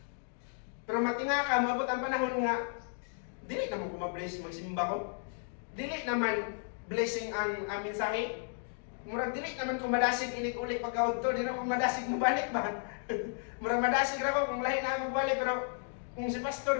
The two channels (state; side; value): silent; right; 55 dB below the other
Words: Pero matinga ka, maabot ang panahon nga, dili naman kumabless magsimba ko. Dili naman blessing ang mensahe. Murag dili naman kumadasig inig-ulit pagkaudto, di na kumadasig mo balik ba? Murag madasig ra ko kung lahi na magbalik, pero kung si